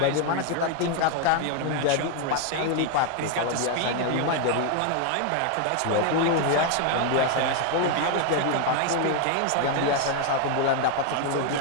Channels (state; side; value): different; both; correlation 0.01